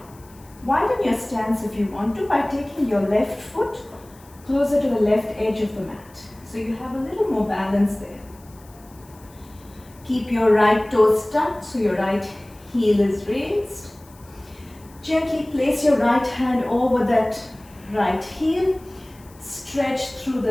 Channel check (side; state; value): left; noise; hiss, 26 dB below the sound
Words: Widen your stance if you want to by taking your left foot closer to the left edge of the mat, so you have a little more balance there. Keep your right toes tucked so your right heel is raised. Gently place your right hand over that right heel. Stretch through